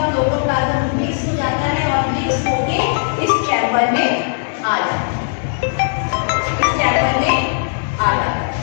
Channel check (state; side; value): silent; right; 67 dB below the other